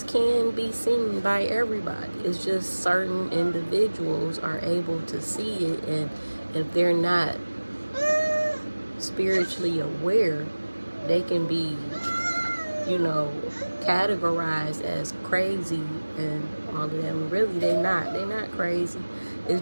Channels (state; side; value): inverted; both; correlation -1.00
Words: can be seen by everybody. It's just certain individuals are able to see it, and if they're not spiritually aware, they can be, categorized as crazy and all of them. Really, they're not. They're not crazy.